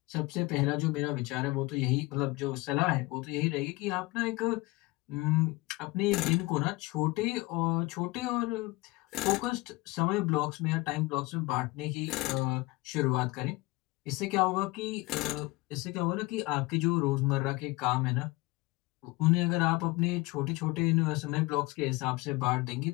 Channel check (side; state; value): right; quieter; 22.1 dB